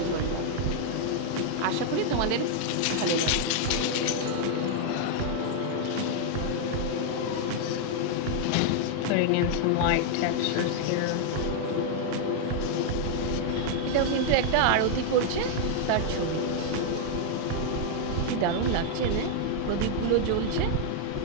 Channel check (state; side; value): different; both; correlation 0.00